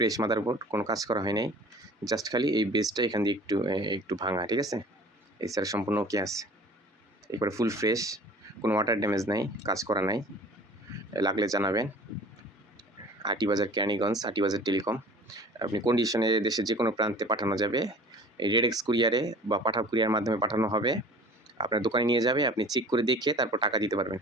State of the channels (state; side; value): normal; both; correlation 0.45